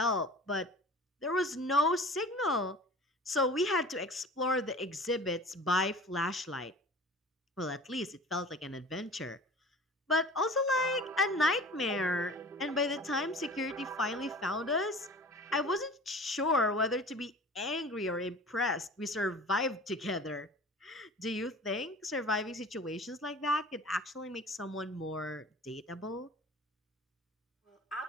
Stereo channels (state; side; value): normal; both; correlation 0.41